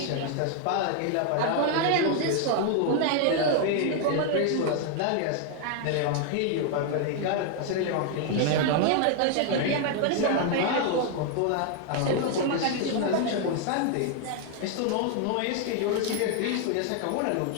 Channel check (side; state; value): both; different; correlation 0.00